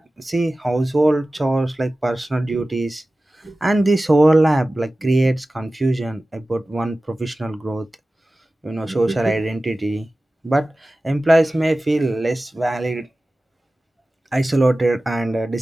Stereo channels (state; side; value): normal; both; correlation 0.96